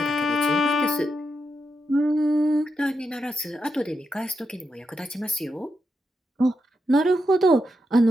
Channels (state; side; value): normal; both; correlation 0.85